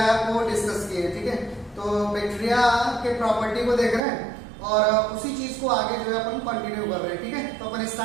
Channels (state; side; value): drops out; left; at 4.0 s